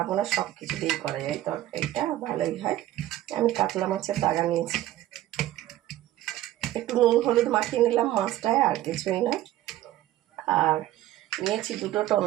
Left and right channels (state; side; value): quieter; left; 14.2 dB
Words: সব কিছু দিয়ে করা যায় তরকারিটা, ভালোই হয়। আমি কাতলা মাছের দাগা নিয়েছি, একটু নুন হলুদ মাখিয়ে নিলাম মাছটায়, আর কিছুই না। আর নিয়েছি দুটো